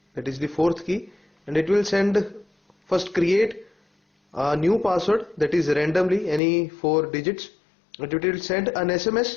that is the fourth key, and it will first create a new password that is randomly any 4 digits, and it will send an SMS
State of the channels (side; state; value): right; drops out; at 6.4 s